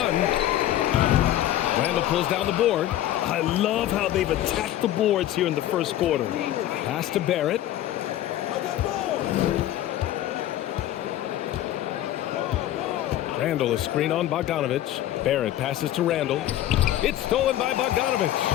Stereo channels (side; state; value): right; quieter; 13.1 dB